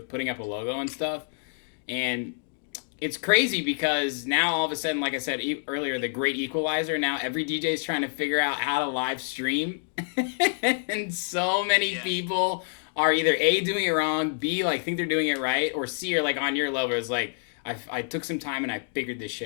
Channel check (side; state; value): right; silent; digital silence